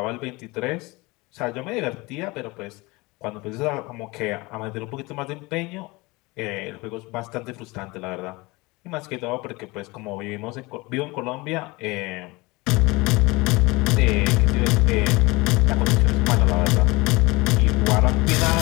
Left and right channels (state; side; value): quieter; right; 23.8 dB